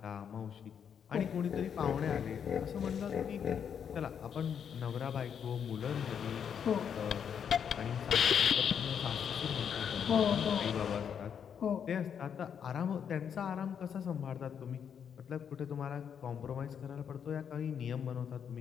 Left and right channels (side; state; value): right; quieter; 7.8 dB